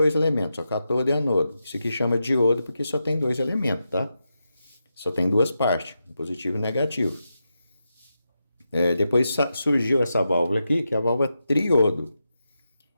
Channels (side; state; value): both; inverted; correlation -0.88